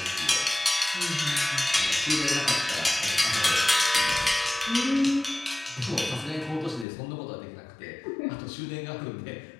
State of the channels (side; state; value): right; drops out; at 6.9 s